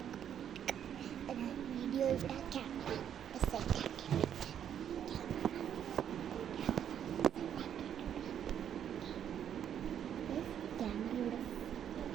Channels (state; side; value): quieter; left; 9.3 dB